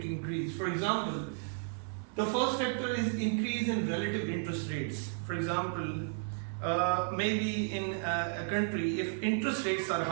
increase? For example, the first factor is increase in relative interest rates. For example, maybe in a country, if interest rates are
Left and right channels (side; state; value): left; silent; 56 dB below the other